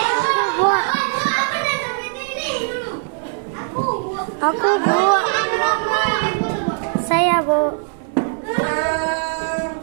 Aku Bu. Saya Bu.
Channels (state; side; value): silent; left; digital silence